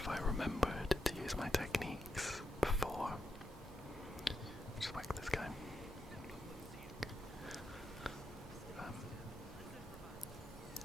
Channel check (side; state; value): both; normal; correlation 0.85